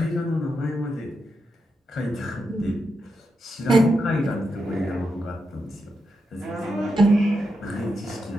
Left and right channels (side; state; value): both; normal; correlation 0.85